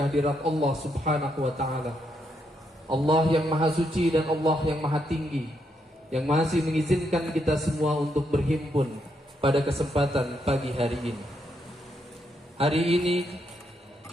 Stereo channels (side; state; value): both; normal; correlation 0.78